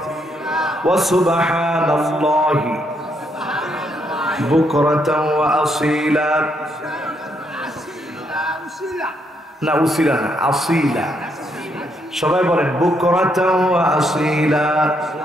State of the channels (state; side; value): normal; both; correlation 0.75